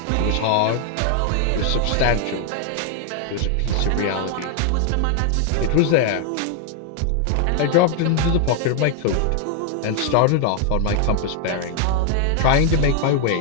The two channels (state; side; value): different; both; correlation 0.00